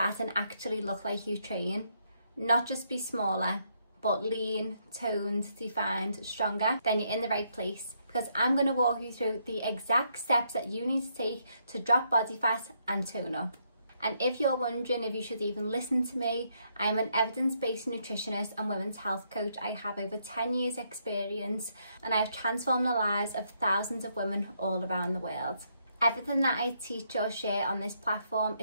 and actually look like you train? Not just be smaller, but lean, toned, defined, stronger? Then you're in the right place, because I'm going to walk you through the exact steps that you need to take to drop body fat and tone up. And if you're wondering if you should even listen to me, I'm an evidence-based nutritionist and women's health coach. I have over 10 years experience and I've transformed the lives of thousands of women all around the world. Everything that I teach or share on this platform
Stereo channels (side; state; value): both; inverted; correlation -0.75